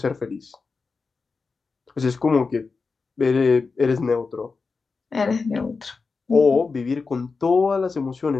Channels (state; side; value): quieter; right; 4.5 dB